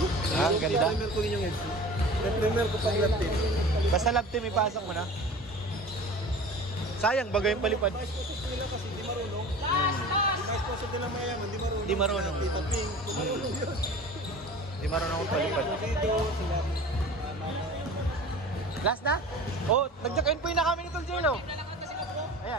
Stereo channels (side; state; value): both; normal; correlation 0.39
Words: Ah, ganda. Primer ko yung heads. Primer ko pag lap team. Basta lab team, ipasok mo na. Sayang, bagay yung palipad. Mais po nila kasi di marunong. Di mais po nila mayaman, di marunong. Di marunong. Tita Ping, di marunong yun. Di marunong akong palipad. Dito, sila. Last na? Oh, nag-check-in po na kami ni Tol Jello.